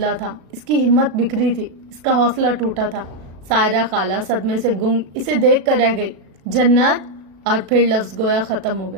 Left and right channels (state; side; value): late; left; 37 ms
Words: تھا، اس کی ہمت بکھری تھی، اس کا حوصلہ ٹوٹا تھا۔ سائرہ خالہ صدمے سے گنگ اسے دیکھ کر رہ گئی۔ جنت، اور پھر لفظ گویا ختم ہو